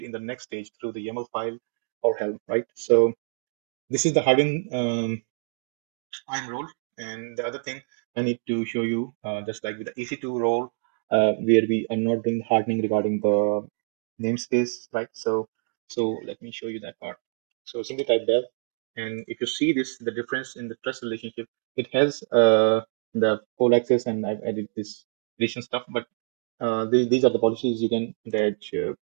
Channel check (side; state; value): left; silent; 61 dB below the other